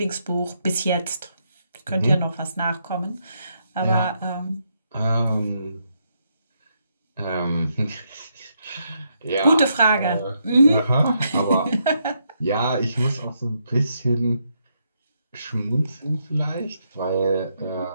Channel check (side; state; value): both; inverted; correlation -0.78